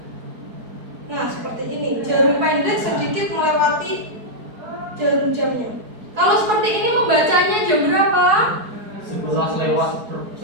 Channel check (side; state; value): left; late; 4.8 ms